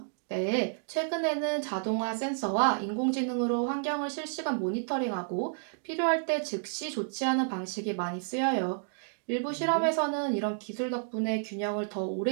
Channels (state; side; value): silent; left; digital silence